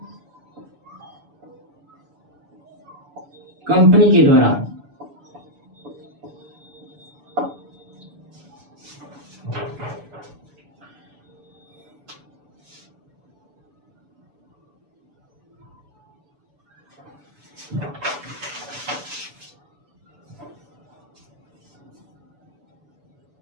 कंपनी के द्वारा।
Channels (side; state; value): left; late; 6.9 ms